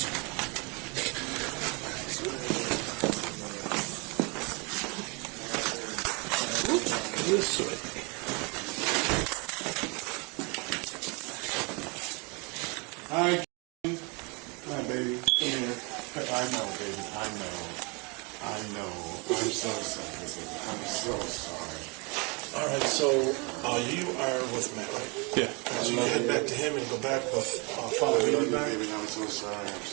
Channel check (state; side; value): quieter; left; 30.8 dB